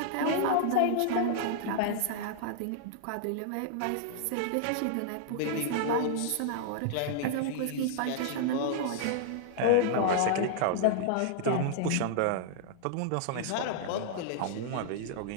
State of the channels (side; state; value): both; different; correlation -0.01